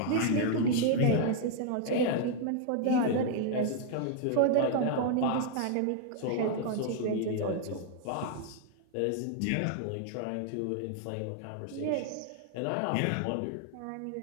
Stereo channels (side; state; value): both; different; correlation 0.00